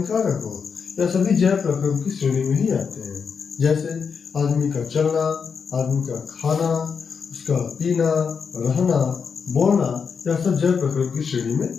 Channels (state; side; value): quieter; right; 6.1 dB